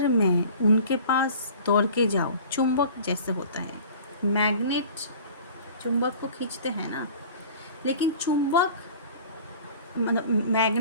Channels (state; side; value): inverted; both; correlation -0.44